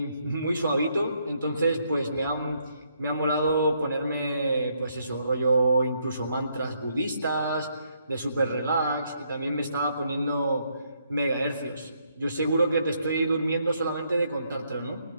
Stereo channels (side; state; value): both; inverted; correlation -0.73